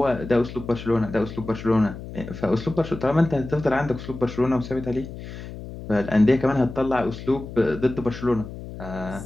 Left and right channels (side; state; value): left; noise; hum, 11 dB below the sound